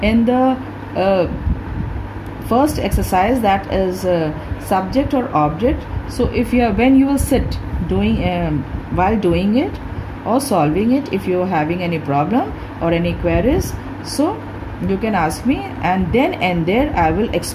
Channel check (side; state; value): both; identical; correlation 1.00